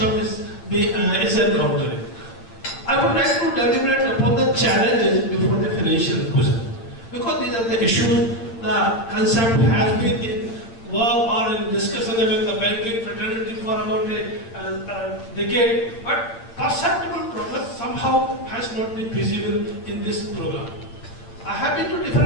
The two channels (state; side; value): late; right; 8.8 ms